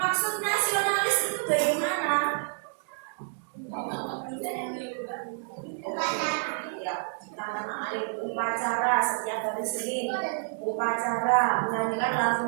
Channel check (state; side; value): silent; left; 58 dB below the other